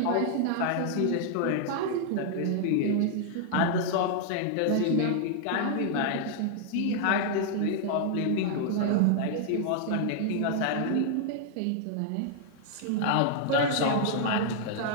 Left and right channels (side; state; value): both; different; correlation -0.01